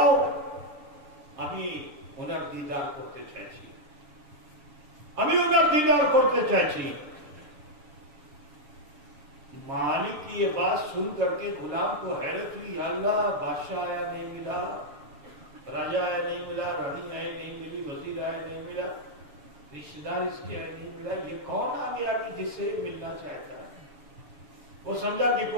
ابھی انہیں دیدار کرتے چاہیے. مالک کی یہ بات سن کر کے غلام کو حیرت ہوئی، یا اللہ بادشاہ آیا نہیں ملا، راجا آیا نہیں ملا، رانی آئے نہیں ملی، وزیر آئے نہیں ملا، رشتے دار اس کے آئے نہیں ملا، یہ کون آ گیا کہ جس سے ملنا چاہتا ہے. وہ سمجھا کہ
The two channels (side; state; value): left; late; 7.4 ms